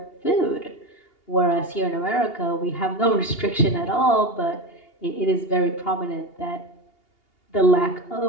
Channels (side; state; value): right; late; 2.8 ms